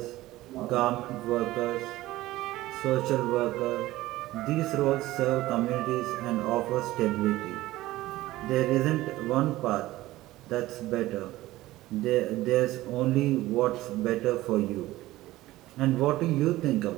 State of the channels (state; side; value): quieter; left; 17.0 dB